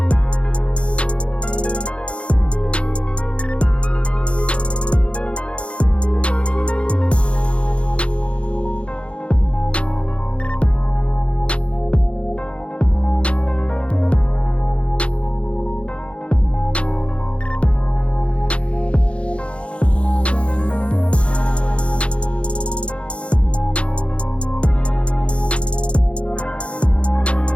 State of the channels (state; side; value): late; right; 0.060 ms